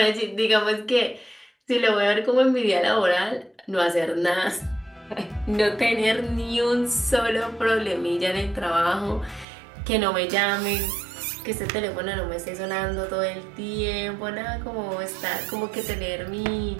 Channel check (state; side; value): drops out; left; at 9.5 s